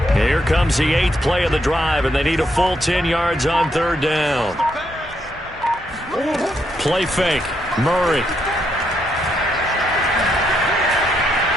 Here comes the 8th play of the drive, and they need a full 10 yards on third down. Play fake. Murray.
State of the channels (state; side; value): normal; both; correlation 0.77